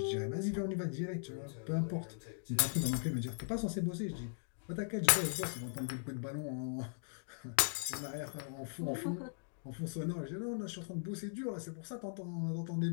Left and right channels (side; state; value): right; silent; digital silence